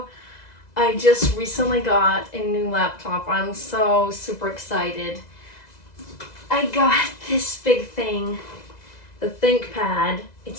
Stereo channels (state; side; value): late; right; 2.0 ms